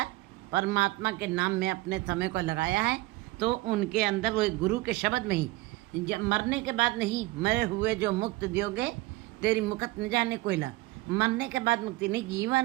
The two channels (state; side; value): quieter; left; 19.7 dB